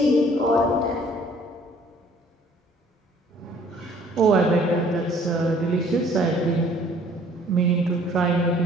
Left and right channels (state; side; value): normal; both; correlation 0.57